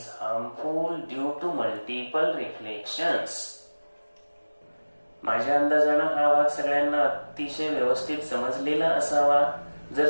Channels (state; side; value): inverted; both; correlation -1.00